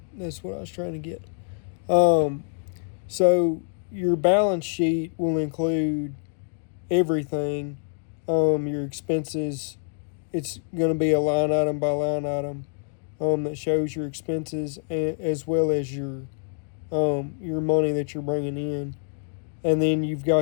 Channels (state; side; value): silent; right; digital silence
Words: That's what I was trying to get. So your balance sheet will include everything. Your expenses, it's going to be a line item by line item that shows your expenses, as well as your money that you're bringing in. And then you've